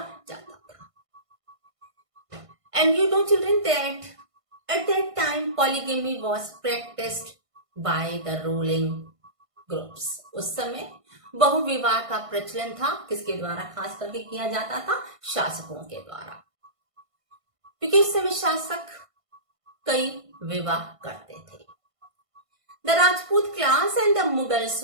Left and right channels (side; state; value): left; late; 1.5 ms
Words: जाता था. And you know, children, that at that time polygamy was practiced by the ruling groups. उस समय बहुविवाह का प्रचलन था. किसके द्वारा खास करके किया जाता था? शासकों के द्वारा, क्योंकि उस समय शासक कई विवाह करते थे. The Rajput class and the Mughals,